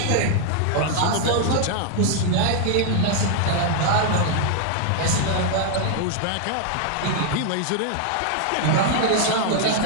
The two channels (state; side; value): different; both; correlation 0.00